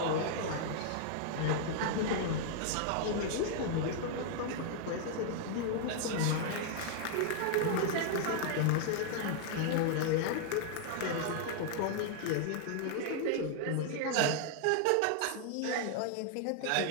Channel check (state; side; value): different; both; correlation 0.00